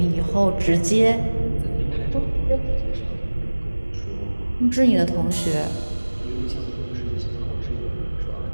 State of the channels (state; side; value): inverted; both; correlation -1.00